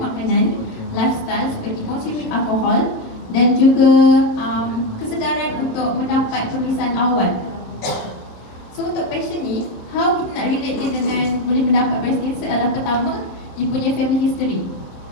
lifestyle seperti consuming alkohol dan juga kesedaran untuk mendapat pemeriksaan awal. So untuk patient ni, how kita nak relate dia dengan boleh mendapat breast cancer adalah pertama, dia punya family history.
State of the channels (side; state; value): right; late; 26 ms